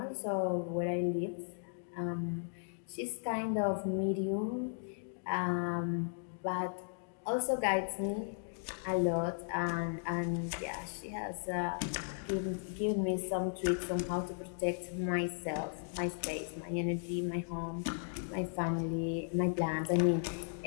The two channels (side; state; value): right; silent; digital silence